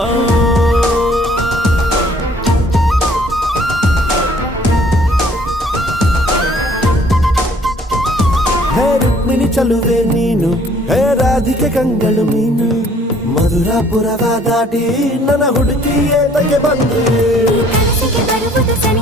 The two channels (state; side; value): normal; both; correlation 0.59